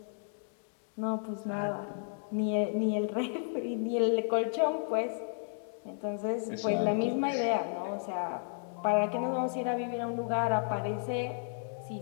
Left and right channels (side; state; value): right; silent; digital silence